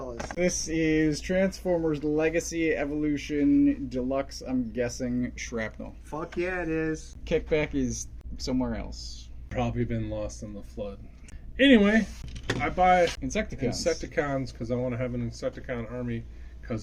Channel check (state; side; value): identical; both; correlation 1.00